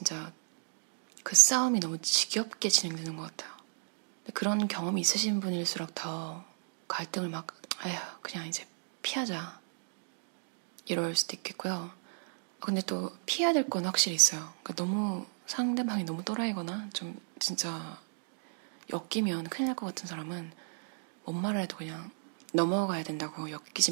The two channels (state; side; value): silent; left; digital silence